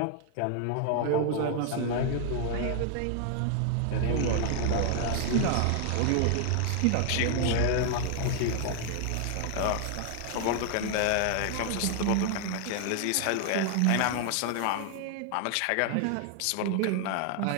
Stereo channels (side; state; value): both; different; correlation 0.00